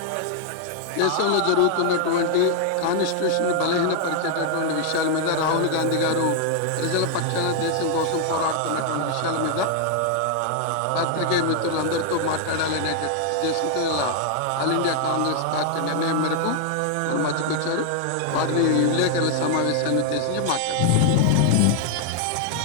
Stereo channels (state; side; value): different; both; correlation 0.00